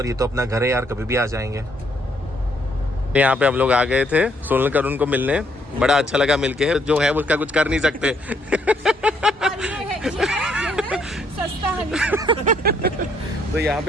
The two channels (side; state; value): both; normal; correlation 0.69